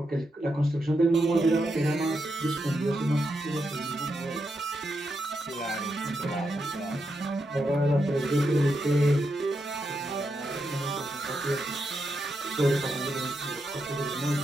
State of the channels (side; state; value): both; normal; correlation 0.84